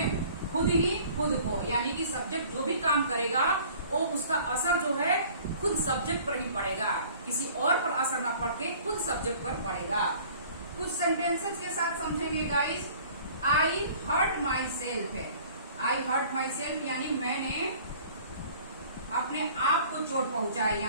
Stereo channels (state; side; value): inverted; both; correlation -0.50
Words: खुद ही खुद को, यानी कि सब्जेक्ट जो भी काम करेगा वो उसका असर जो है खुद सब्जेक्ट पर ही पड़ेगा, किसी और पर असर ना पड़ के खुद सब्जेक्ट पर पड़ेगा। कुछ सेंटेंसेस के साथ समझेंगे guys. I hurt myself है, आई हर्ट माई सेल्फ यानी मैंने अपने आप को चोट पहुंचाई।